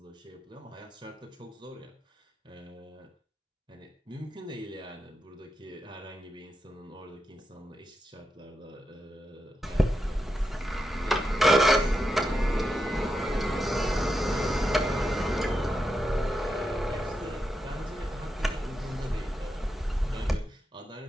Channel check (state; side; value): normal; both; correlation 0.87